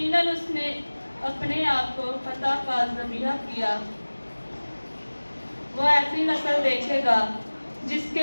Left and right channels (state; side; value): inverted; both; correlation -1.00